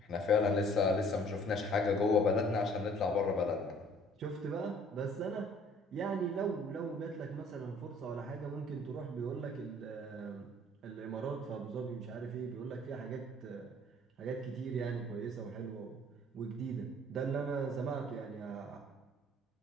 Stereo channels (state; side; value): normal; both; correlation 0.56